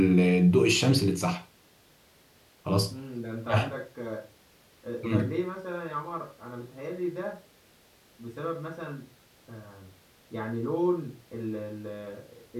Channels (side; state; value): both; identical; correlation 1.00